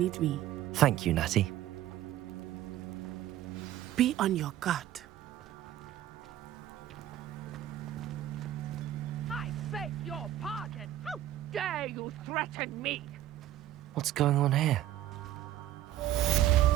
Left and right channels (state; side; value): quieter; left; 13.0 dB